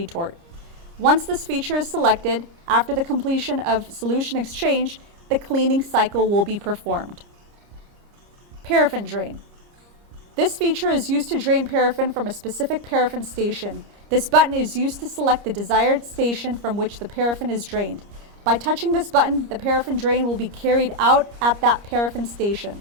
Once this feature is selected, after the completion of solution exchange, the cleaning cycle will be performed. Paraffin drain. This feature is used to drain paraffin from a specific paraffin station. This button is used to select the desired station from which the paraffin is drained. By touching this button, the paraffin drain will be carried out at that paraffin station.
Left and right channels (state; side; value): late; left; 30 ms